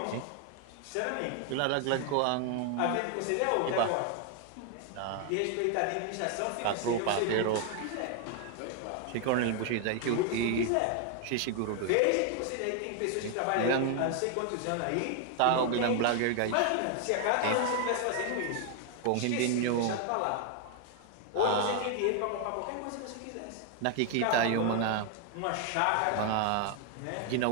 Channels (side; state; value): both; different; correlation 0.00